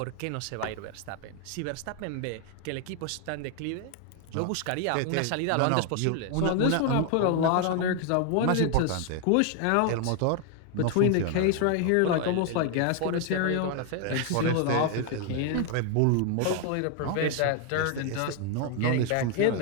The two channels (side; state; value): both; different; correlation 0.00